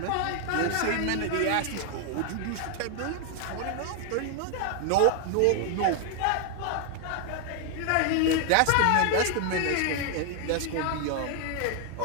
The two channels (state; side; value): different; both; correlation 0.00